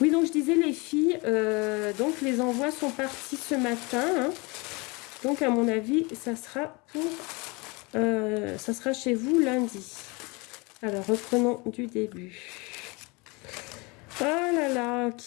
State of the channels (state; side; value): quieter; right; 27.4 dB